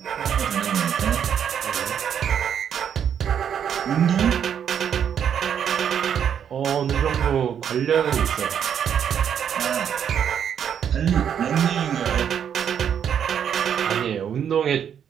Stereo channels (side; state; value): left; quieter; 8.5 dB